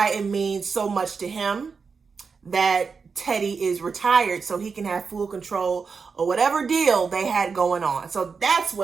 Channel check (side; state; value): left; quieter; 5.3 dB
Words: it means so much to him that Teddy is retired so he can have full control of whatever deal they had going on. So that's